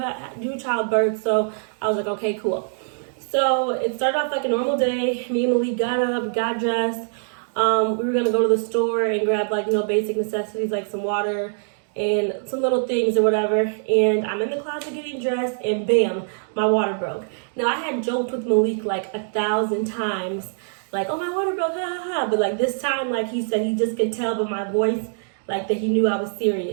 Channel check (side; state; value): left; silent; digital silence